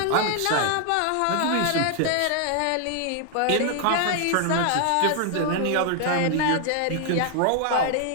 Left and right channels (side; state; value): both; different; correlation 0.00